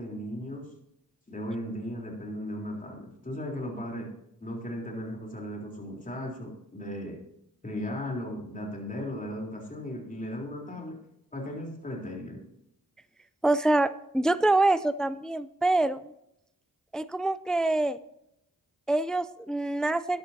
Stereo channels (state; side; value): normal; both; correlation 0.87